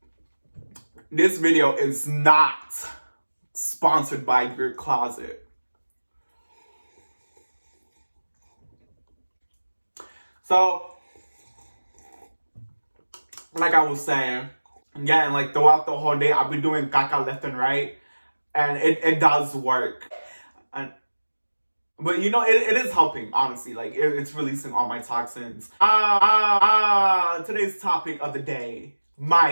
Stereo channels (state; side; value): inverted; both; correlation -1.00